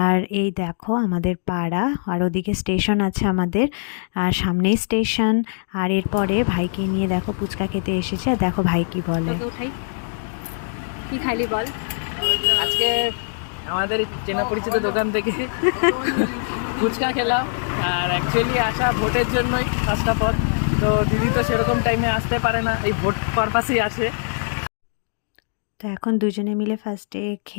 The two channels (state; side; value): silent; right; digital silence